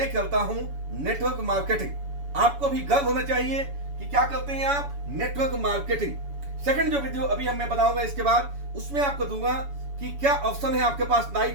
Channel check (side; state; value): left; late; 7.1 ms